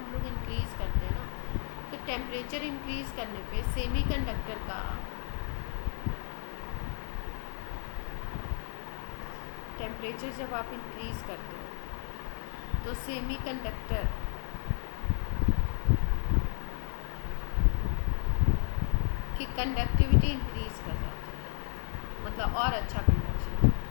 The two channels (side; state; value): right; silent; digital silence